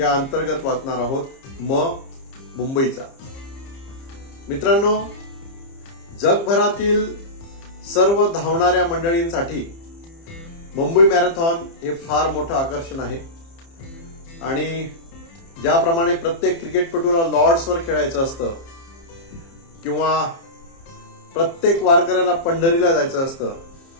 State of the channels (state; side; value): late; right; 30 ms